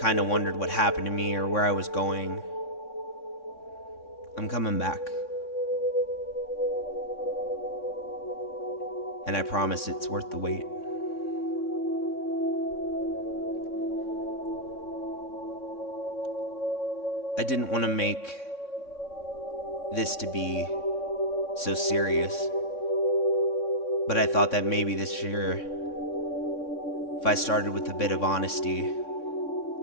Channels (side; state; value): right; late; 3.6 ms